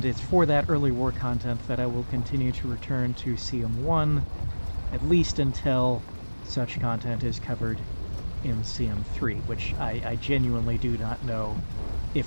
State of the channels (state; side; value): inverted; both; correlation -1.00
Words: it's for that early war content that I will continue to return to CM1, at least until such content is covered in CM3, which I genuinely do not know